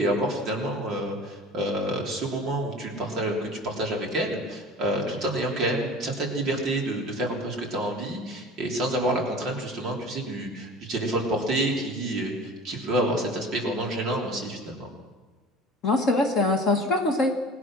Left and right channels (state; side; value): normal; both; correlation 0.40